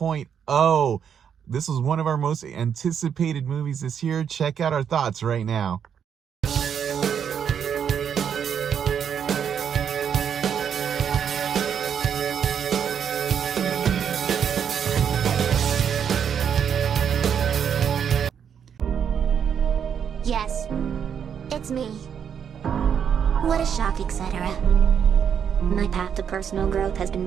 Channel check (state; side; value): quieter; left; 7.9 dB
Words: This was one of our most anticipated movies this year. Check out our thoughts right now. Yes, it's me. What a shock, etc. My path to personal growth has been